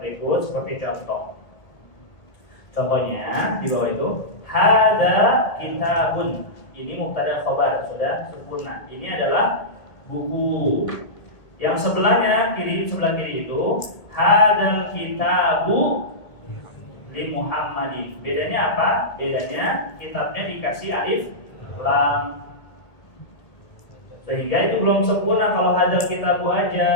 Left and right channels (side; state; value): right; late; 1.5 ms